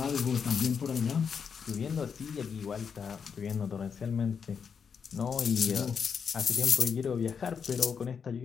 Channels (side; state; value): right; quieter; 6.5 dB